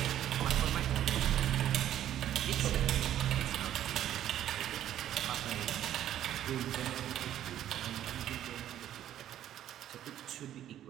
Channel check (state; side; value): quieter; left; 11.6 dB